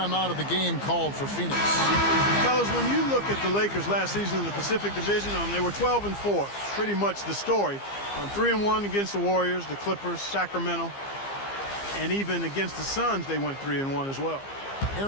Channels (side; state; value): right; late; 15 ms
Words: out of the game called for Phoenix. Fellas, when you look at the Lakers last season in the Pacific Division, they were 12-4. Pretty much the story. 3-1 against the Warriors, the Clippers, Sacramento. And even against the Suns, they went 3-1 as well.